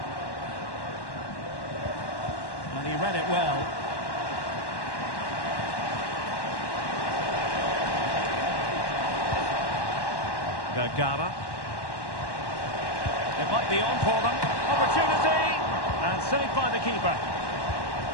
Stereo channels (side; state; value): right; late; 1.1 ms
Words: And he read it well. Vergara. It might be on for them. Opportunity! And saved by the keeper.